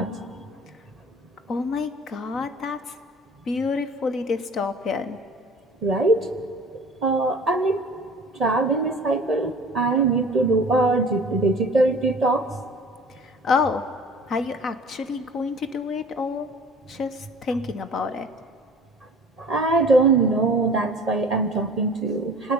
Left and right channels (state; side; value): normal; both; correlation 0.46